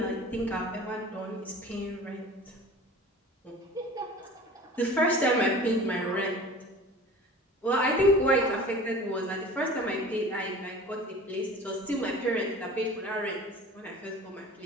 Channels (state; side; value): normal; both; correlation 0.40